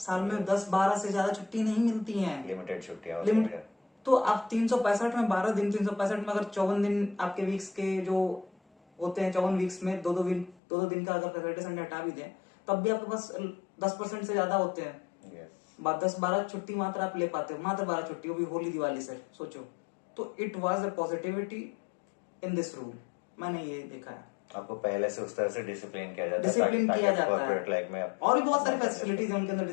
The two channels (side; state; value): right; drops out; at 10.6 s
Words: में 10-12 से ज्यादा छुट्टी नहीं मिलती है, लिमिटेड छुट्टियां लिमिट। तो आप 365 में 12 दिन, 365 में अगर 54 दिन आपके वीक्स के जो होते हैं, 54 वीक्स में दो दो दिन का अगर सैटरडे संडे हटा भी दें, तब भी आपके पास 10% से ज्यादा होते हैं। 10-12 छुट्टी मात्र आप ले पाते हो, मात्र 12 छुट्टी, वो भी होली दिवाली से सोचो। तो it was a positivity in this rule, मैंने ये देखा है। आपको पहले से उस तरह से डिसिप्लिन किया जाता है, डिसिप्लिन किया जाता कॉर्पोरेट लाइफ में और भी बहुत सारी फैसिलिटीज है उनके अंदर